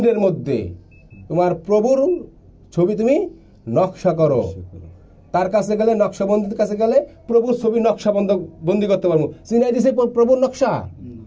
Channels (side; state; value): both; identical; correlation 1.00